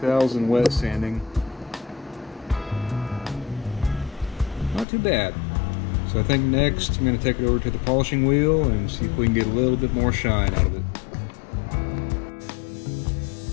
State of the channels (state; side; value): drops out; right; at 4.9 s